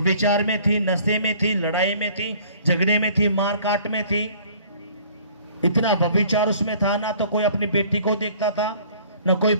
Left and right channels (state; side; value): inverted; both; correlation -0.54